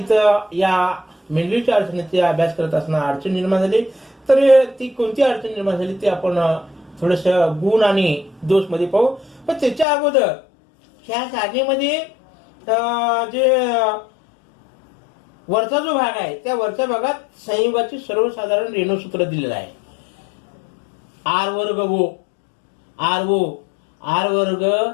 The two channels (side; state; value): right; drops out; at 9.9 s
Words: या मेंडलीच्या अडचणीचा अभ्यास करत असताना अडचण निर्माण झाली. तर ती कोणती अडचण निर्माण झाली ते आपण थोडस गुण आणि दोष मध्ये पाहू. पण त्याच्या अगोदर ह्या सारणीमध्ये जे वरचा जो भाग आहे त्या वरच्या भागात संयुगाची सर्वसाधारण रेणूसूत्र दिलेलं आहे. आर वर्ग ओ, आर ओ, आर वर्ग